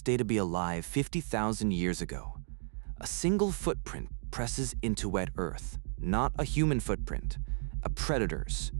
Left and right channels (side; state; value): left; silent; digital silence